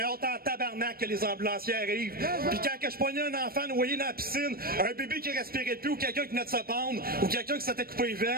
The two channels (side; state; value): left; late; 0.44 ms